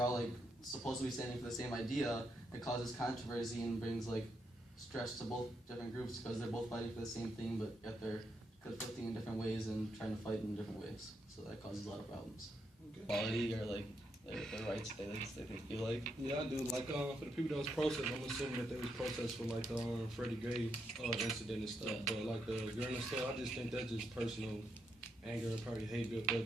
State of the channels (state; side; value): normal; both; correlation 0.80